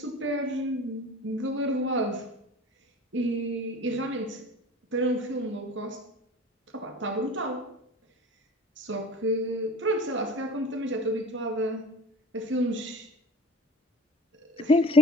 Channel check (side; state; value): both; normal; correlation 0.42